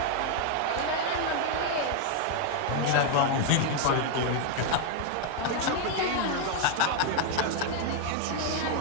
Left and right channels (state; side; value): different; both; correlation 0.01